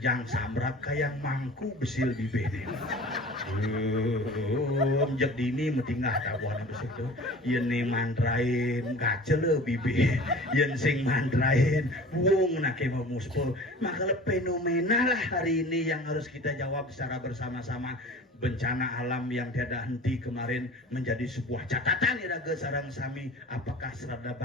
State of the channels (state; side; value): normal; both; correlation 0.41